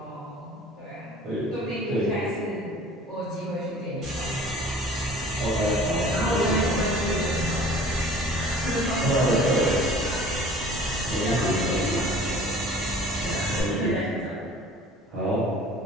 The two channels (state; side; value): normal; both; correlation 0.47